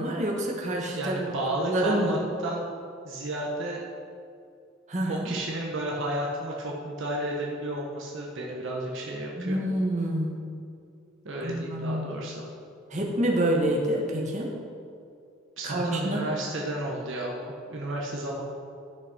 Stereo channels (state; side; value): normal; both; correlation 0.47